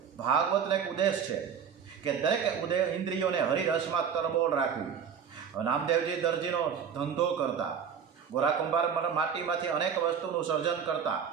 એક ઉદ્દેશ છે કે દરેક ઇન્દ્રિયોને હરિરસમાં તરબોળ રાખવી. નામદેવજી દરજીનો ધંધો કરતા, ગોરા કુંભાર માટીમાંથી અનેક વસ્તુનું સર્જન કરતા,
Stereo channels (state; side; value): quieter; left; 7.3 dB